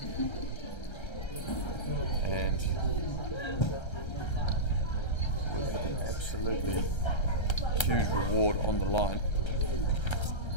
and with an absolutely huge reward on the line.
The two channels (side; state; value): right; late; 1.3 ms